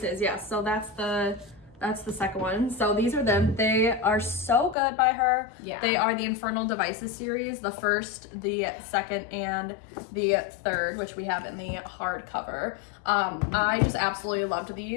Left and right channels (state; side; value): drops out; right; at 4.8 s